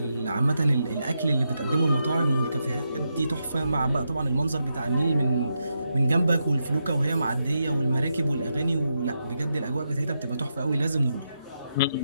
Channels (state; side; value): inverted; both; correlation -0.84